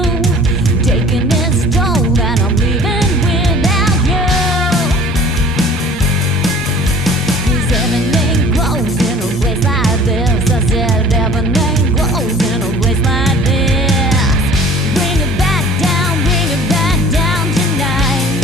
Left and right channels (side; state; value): both; normal; correlation 0.48